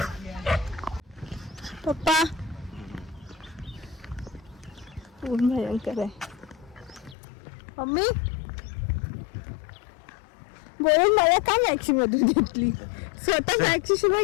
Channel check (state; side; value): drops out; right; at 7.2 s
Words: पप्पा ऊन भयंकर आहे. मम्मी बोलून मला का मॅक्सी मधून घेतली, स्वतः मॅक्सी शिवाय